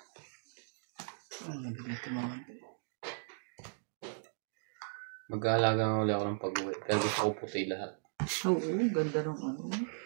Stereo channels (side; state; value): left; silent; digital silence